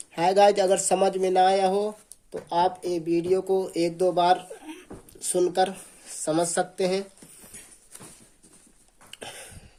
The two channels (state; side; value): identical; both; correlation 1.00